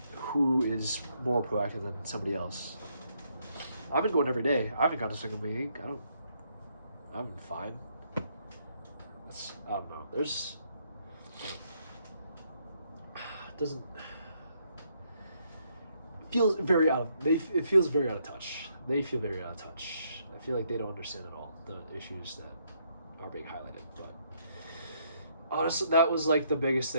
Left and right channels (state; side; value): inverted; both; correlation -0.73